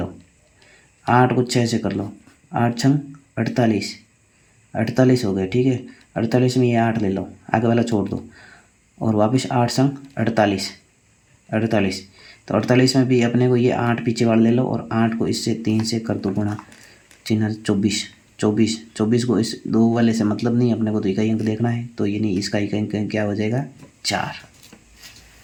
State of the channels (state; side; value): identical; both; correlation 1.00